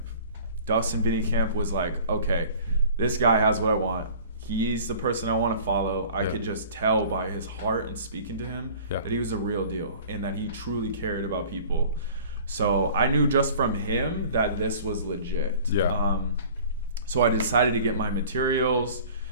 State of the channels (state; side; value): inverted; both; correlation -0.46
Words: Dustin Vinnycamp was like, okay, this guy has what I want. He's the person I want to follow. I could just tell by his heart and speaking to him that he was a real deal and that he truly cared about people. So I knew just from him that this was legit. Yeah. So I decided to get my materials.